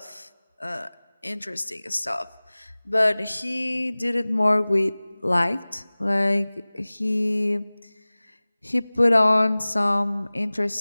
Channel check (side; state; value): both; inverted; correlation -0.99